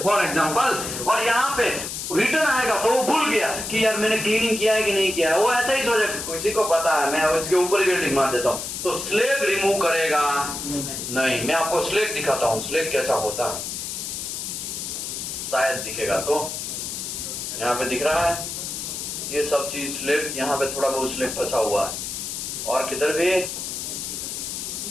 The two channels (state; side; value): noise; left; hiss, 5 dB below the sound